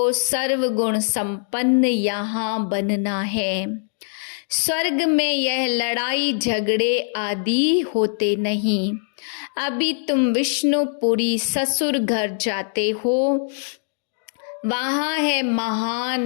सर्वगुण संपन्न यहाँ बनना है। स्वर्ग में यह लड़ाई झगड़े आदि होते नहीं। अभी तुम विष्णुपुरी ससुर घर जाते हो, वहां है महान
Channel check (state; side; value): silent; right; digital silence